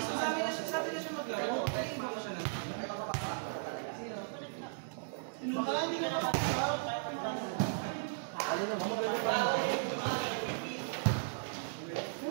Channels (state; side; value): silent; left; 54 dB below the other